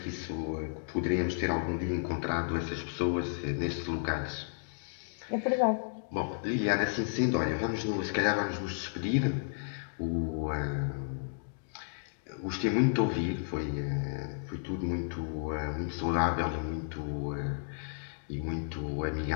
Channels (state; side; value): silent; right; digital silence